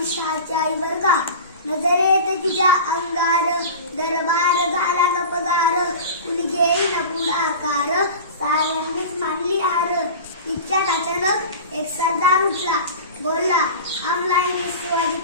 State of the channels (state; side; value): inverted; both; correlation -0.33